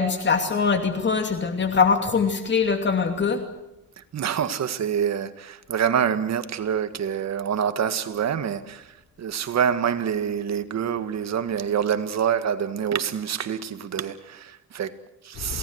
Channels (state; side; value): normal; both; correlation -0.08